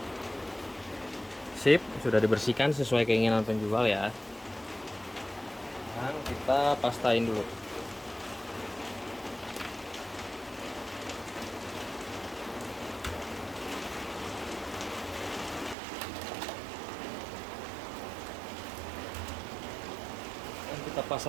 Sip, sudah dibersihkan sesuai keinginan penjual ya. Sekarang kita pastain dulu. Dan kita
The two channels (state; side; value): drops out; left; at 15.8 s